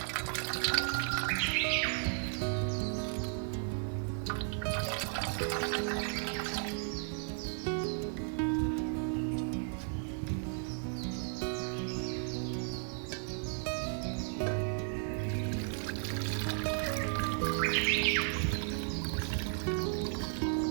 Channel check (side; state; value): left; silent; 55 dB below the other